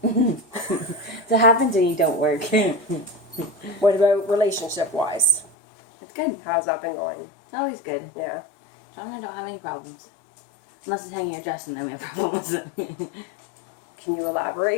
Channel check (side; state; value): right; drops out; at 5.5 s